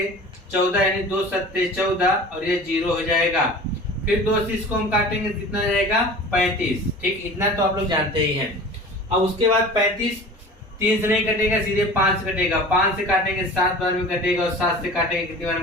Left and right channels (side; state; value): both; normal; correlation 0.40